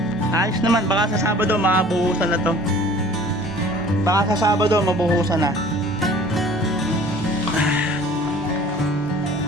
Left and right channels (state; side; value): normal; both; correlation 0.48